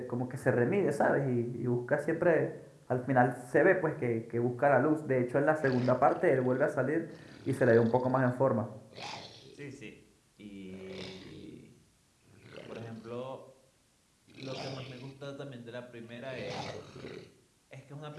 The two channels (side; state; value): both; identical; correlation 1.00